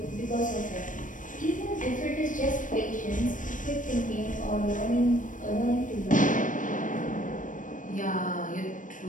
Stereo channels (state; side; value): late; right; 0.38 ms